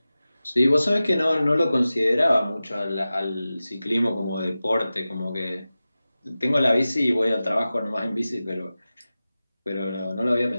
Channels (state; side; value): inverted; both; correlation -0.95